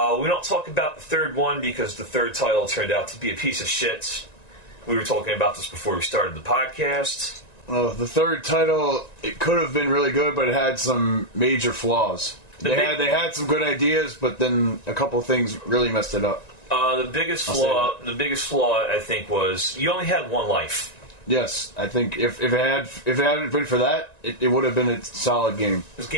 don't talk about the third one because the third title turned out to be a piece of shit. We were talking about this before we started the podcast. Well, the third title, it could have been really good, but it had some major flaws. They had some good ideas, but then a couple of things really messed it up. The biggest flaw, I think, was you only had one life. Yes, I think if it hadn't been for that, it would have been a solid game. This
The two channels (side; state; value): right; late; 1.9 ms